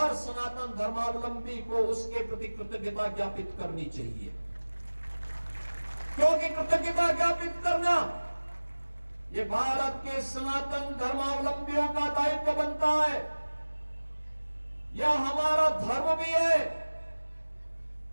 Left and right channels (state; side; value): inverted; both; correlation -1.00